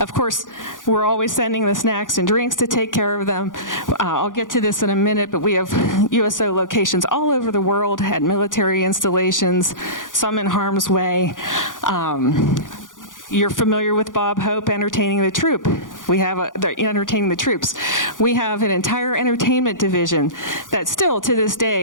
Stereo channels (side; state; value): right; late; 0.88 ms